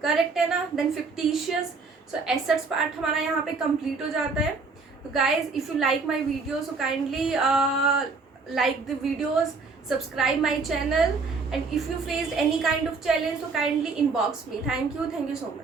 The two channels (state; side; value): quieter; left; 4.3 dB